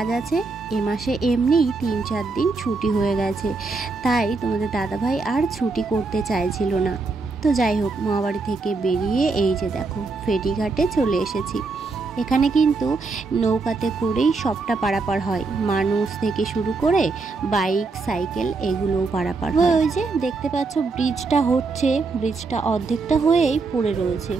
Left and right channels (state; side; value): quieter; left; 3.9 dB